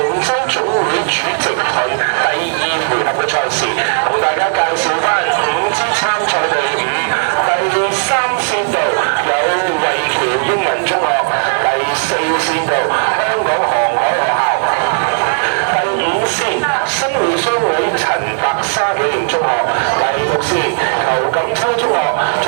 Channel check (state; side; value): silent; left; digital silence